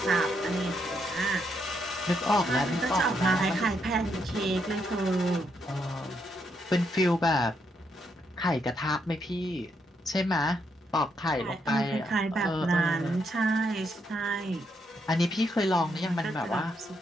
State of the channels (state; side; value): normal; both; correlation 0.77